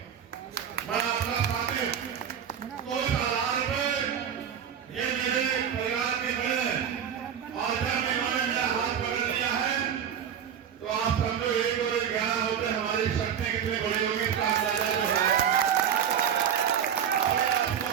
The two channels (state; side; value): quieter; left; 8.5 dB